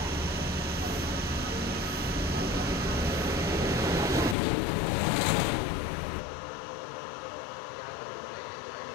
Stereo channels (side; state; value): right; drops out; at 4.4 s